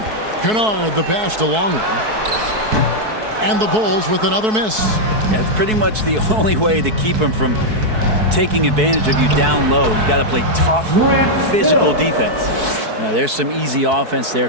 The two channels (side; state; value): left; late; 4.6 ms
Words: Kennard, the pass to Longley. And the Bulls with another miss. Yeah, it's pretty much the only way to keep him from taking advantage of you down low. You got to play tough, physical defense. Now, there's some easy offense